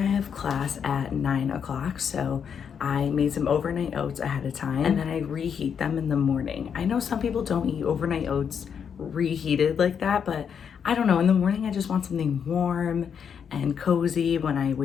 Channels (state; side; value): quieter; right; 7.3 dB